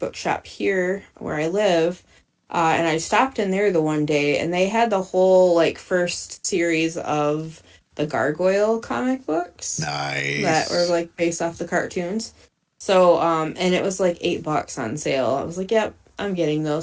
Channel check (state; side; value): identical; both; correlation 1.00